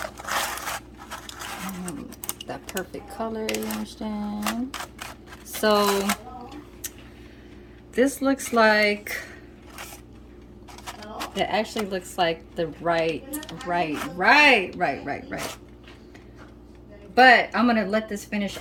color, you understand? So this looks like, it actually looks like the right. But I'm gonna let this finish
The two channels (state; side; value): identical; both; correlation 1.00